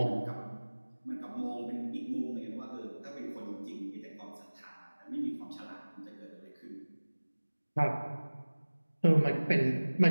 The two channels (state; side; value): inverted; both; correlation -1.00